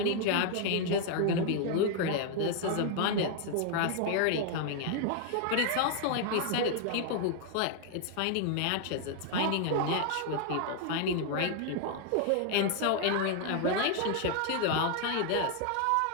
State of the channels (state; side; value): different; both; correlation 0.00